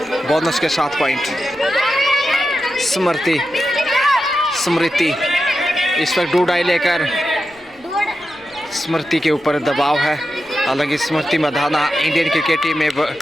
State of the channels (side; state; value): left; noise; rumble, 29 dB below the sound